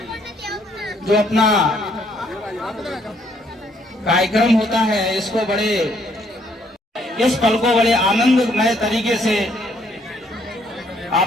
जो अपना कार्यक्रम होता है, इसको बड़े इस पल को बड़े आनंदमय तरीके से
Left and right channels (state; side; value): normal; both; correlation 0.68